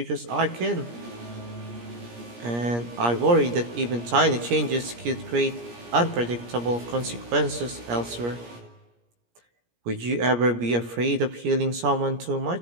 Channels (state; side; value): late; left; 17 ms